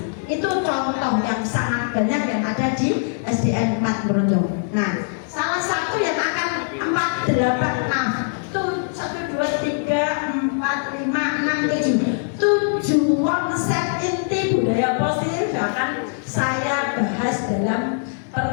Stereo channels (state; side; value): silent; right; 64 dB below the other